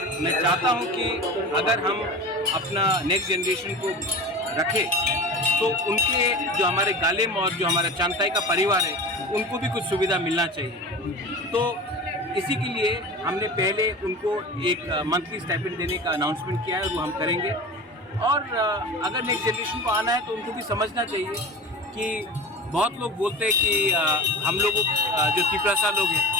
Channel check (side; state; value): both; normal; correlation 0.32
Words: मैं चाहता हूँ कि अगर हम अपना नेक्स्ट जनरेशन को रखें तो उनके जो हमारे गालिम और जो हमारा चांताई का परिवार है उनको भी कुछ सुविधा मिलना चाहिए। तो इसी के लिए हमने पहले उनको एक मंथली स्टाइपेंड देने का अनाउंसमेंट किया है, वो हम करेंगे। और अगर नेक्स्ट जनरेशन को आना है तो उनको भी समझना चाहिए कि बहुत लोग बोलते हैं कि हम लोगों जो त्रिपुरा लोग हैं